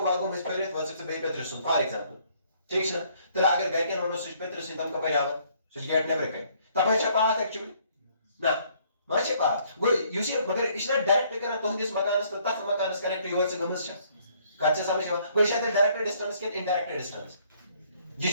में फेरित वस से बे पेत्र सुन फॉर एग्जांपल ठीक है तो अगर गए के नोनो स्विच पेत्र से तम कपर आवा स्विच गेट ने ब्रेक तब है पाथ एक्चुअली ना माचे पाथ गो युस मगर इस डायरेक्ट करना तोहदिस मकानस तो तथ मकानस कनेक्ट योर से गमस छ कच्चे समझ गो शायद डायरेक्ट डिस्टेंस के इनडायरेक्ट डिस्टेंस ये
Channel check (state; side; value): inverted; both; correlation -0.64